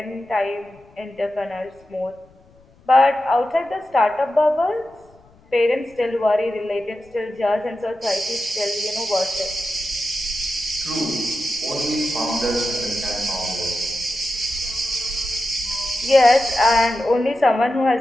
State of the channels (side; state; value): left; noise; rumble, 29 dB below the sound